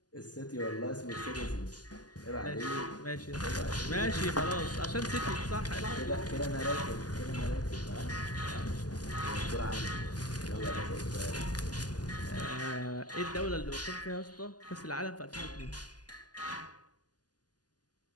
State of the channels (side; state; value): right; late; 0.69 ms